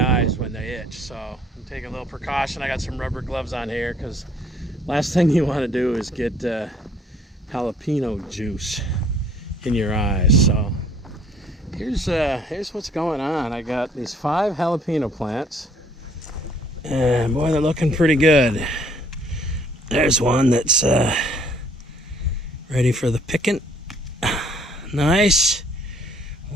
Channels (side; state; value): both; normal; correlation 0.60